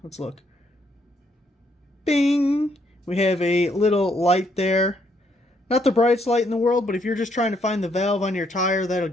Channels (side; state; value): both; normal; correlation 0.72